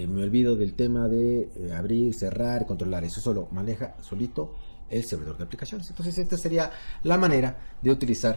me olvido del tema de abrir, cerrar, controlar. Eso solo maneja solito el servidor de aplicaciones. Entonces esta sería la manera de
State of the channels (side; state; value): both; inverted; correlation -1.00